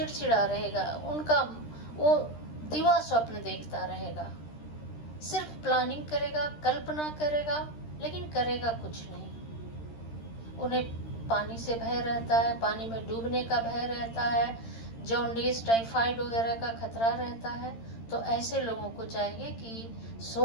रहेगा, उनका वो दिवा स्वप्न देखता रहेगा, सिर्फ प्लानिंग करेगा, कल्पना करेगा, लेकिन करेगा कुछ नहीं। उन्हें पानी से भय रहता है, पानी में डूबने का भय रहता है, जॉन्डिस, टाइफाइड वगैरह का खतरा रहता है। तो ऐसे लोगों को चाहिए कि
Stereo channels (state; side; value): late; right; 13 ms